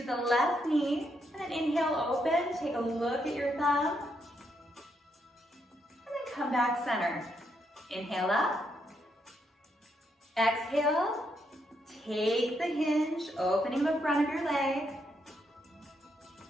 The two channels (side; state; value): both; normal; correlation 0.78